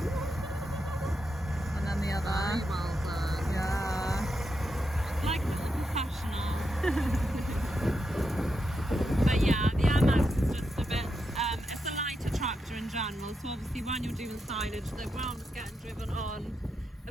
And then the other. Very well done. Yeah. Like a little professional. But yeah, the MX is just a bit, it's a lighter tractor in general, so obviously when you're doing silage, the ground is getting driven on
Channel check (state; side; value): normal; both; correlation 0.85